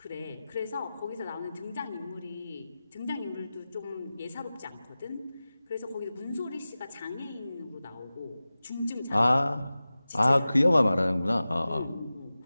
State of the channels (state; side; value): inverted; both; correlation -0.96